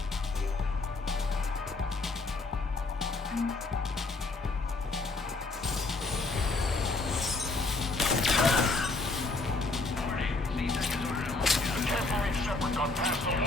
Shepard got past the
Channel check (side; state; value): right; quieter; 3.4 dB